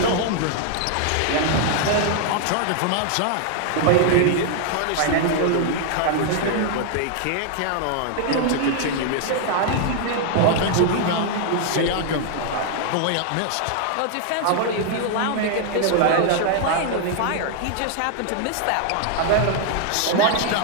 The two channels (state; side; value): different; both; correlation 0.00